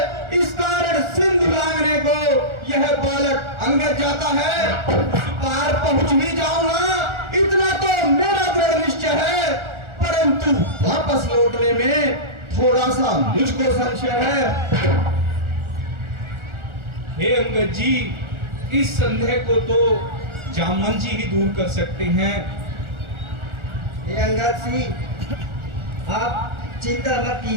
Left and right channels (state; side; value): late; left; 1.4 ms